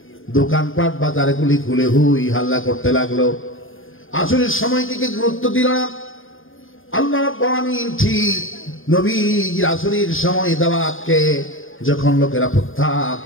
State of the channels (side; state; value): right; late; 0.59 ms